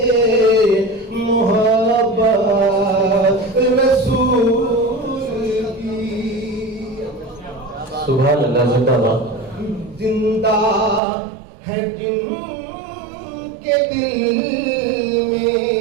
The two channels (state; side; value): drops out; left; at 11.0 s